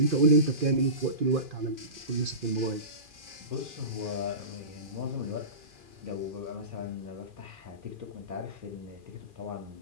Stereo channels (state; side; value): late; left; 2.4 ms